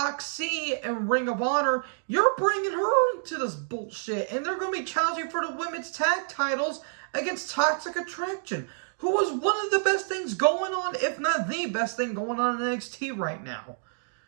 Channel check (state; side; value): silent; left; digital silence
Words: in Ring of Honor. You're bringing her into this bullshit, and they're going to be challenging for the women's tag titles against Toxic Attraction, who was one of the best things going on, if not the best thing going on in NXT right now.